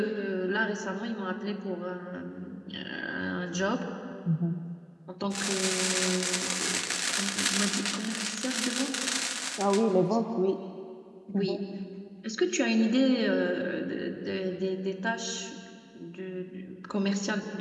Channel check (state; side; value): identical; both; correlation 1.00